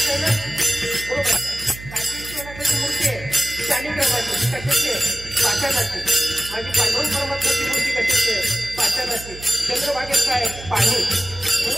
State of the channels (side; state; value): right; noise; hum, 14 dB below the sound